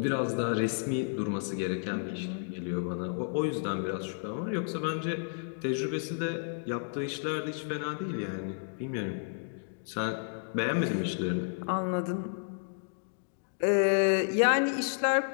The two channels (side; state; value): right; silent; digital silence